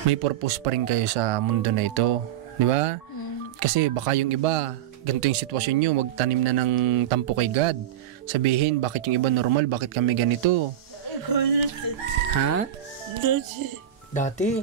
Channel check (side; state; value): left; quieter; 10.9 dB